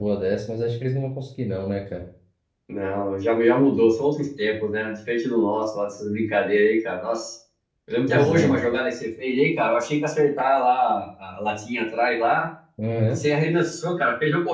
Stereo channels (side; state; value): both; identical; correlation 1.00